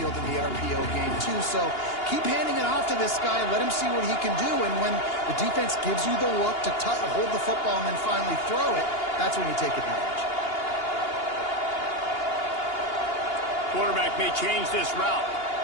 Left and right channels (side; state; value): right; late; 2.8 ms